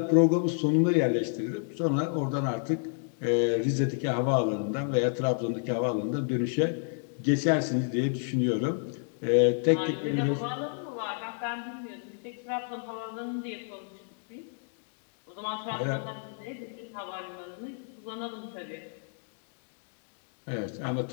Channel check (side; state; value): right; silent; 57 dB below the other